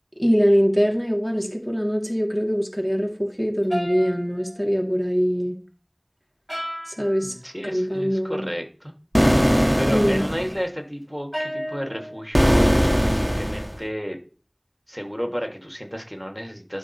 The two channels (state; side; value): identical; both; correlation 1.00